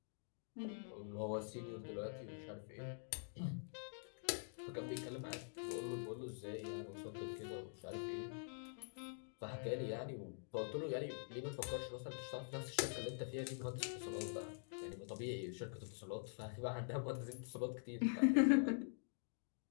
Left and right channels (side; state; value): right; silent; digital silence